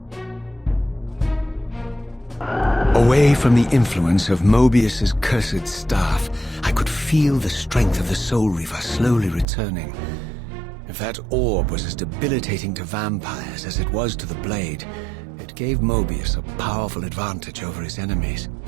Away from the influence of Moebius's cursed staff, I could feel the strength of the Soul Reaver slowly returning. If that orb was as debilitating to vampires as it was to the blade, it gave Moebius a powerful advantage over his enemies.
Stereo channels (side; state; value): left; drops out; at 9.5 s